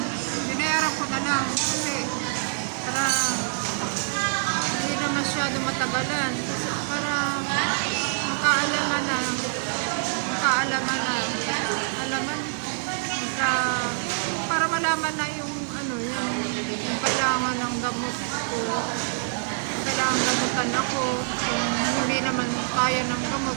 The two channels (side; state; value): left; silent; digital silence